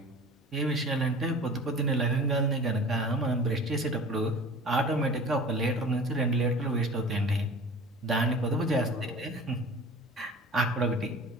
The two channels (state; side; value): normal; both; correlation 0.40